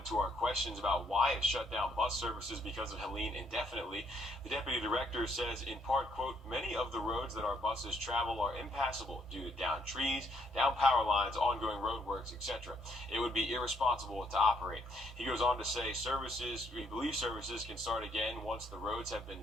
to our questions about why it shut down bus services because of Helene indefinitely. The deputy director says, in part, quote, many of the roads that our buses travel are impassable due to downed trees, down power lines, ongoing roadworks, etc. It would be irresponsible to operate. He goes on to say we believe services can start again once the roads have been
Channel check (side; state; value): both; normal; correlation 0.70